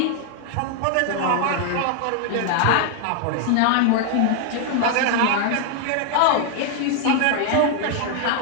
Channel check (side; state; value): both; different; correlation 0.00